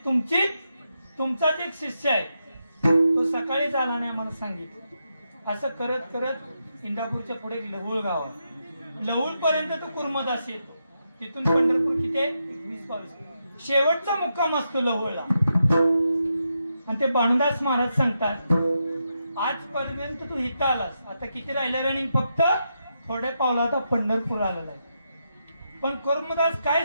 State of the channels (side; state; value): both; inverted; correlation -0.84